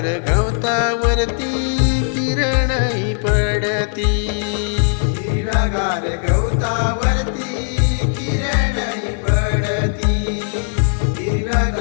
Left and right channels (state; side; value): silent; right; digital silence